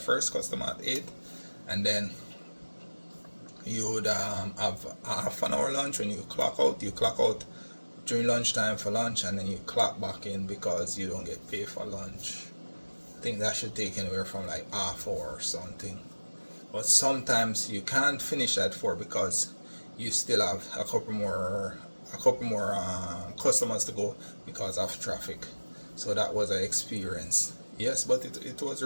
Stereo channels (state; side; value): inverted; both; correlation -1.00